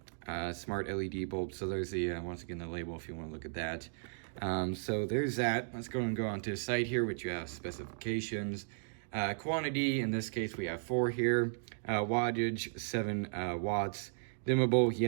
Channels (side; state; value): left; silent; digital silence